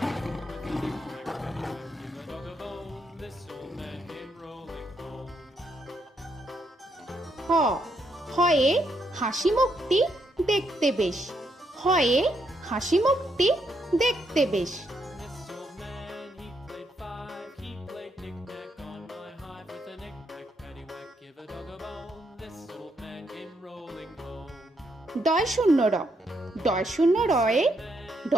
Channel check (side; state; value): both; normal; correlation 0.77